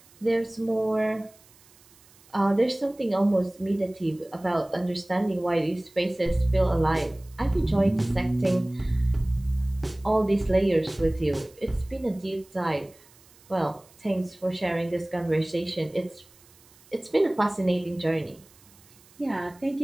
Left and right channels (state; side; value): noise; right; hiss, 27 dB below the sound